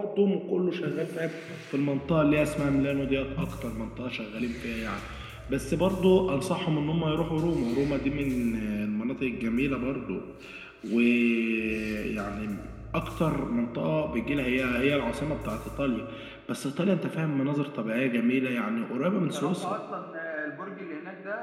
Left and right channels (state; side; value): identical; both; correlation 1.00